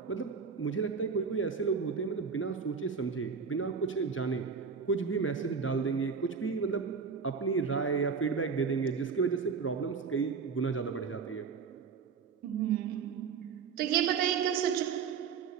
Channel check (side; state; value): left; quieter; 5.8 dB